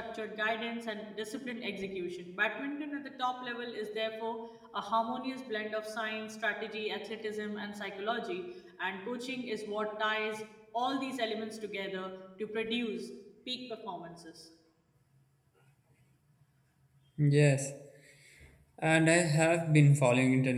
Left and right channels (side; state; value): both; identical; correlation 1.00